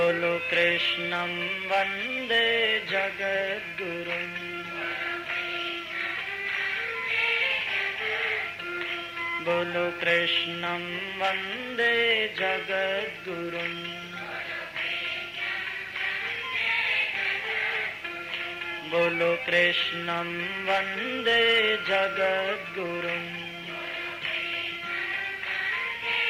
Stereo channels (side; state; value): both; identical; correlation 1.00